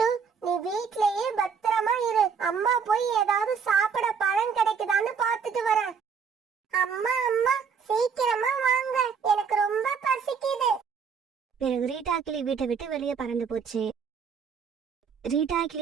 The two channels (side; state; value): left; quieter; 6.2 dB